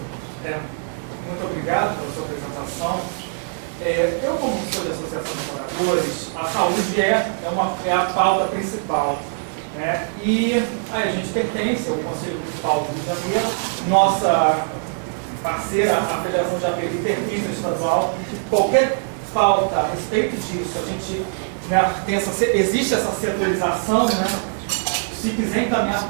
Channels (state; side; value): silent; left; 61 dB below the other